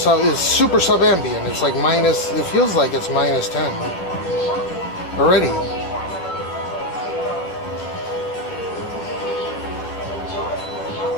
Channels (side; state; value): right; late; 11 ms